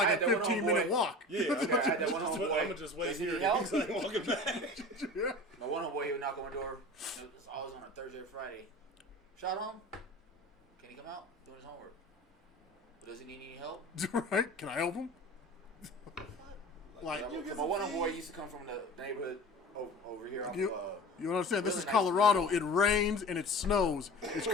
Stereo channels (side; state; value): both; normal; correlation 0.37